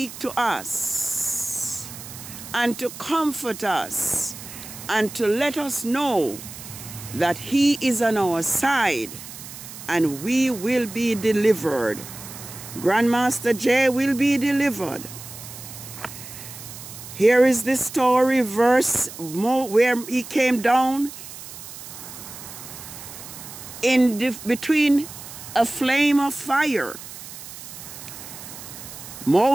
to us and to comfort us and to let us know that he is on our side and we will be delivered. Grandmaster J will be delivered. Here is the story verse where he came down between a flame of fire.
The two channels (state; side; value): noise; right; hiss, 13 dB below the sound